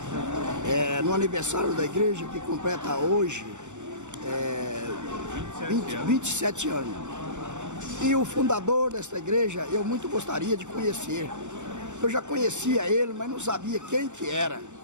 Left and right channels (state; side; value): late; left; 0.84 ms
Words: no aniversário da igreja que completa hoje 27 anos. E o fundador desta igreja eu muito gostaria de conhecer. Eu já conhecia ele, mas não sabia quem que era,